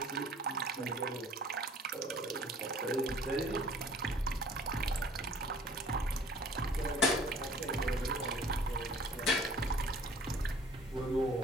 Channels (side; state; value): both; normal; correlation 0.52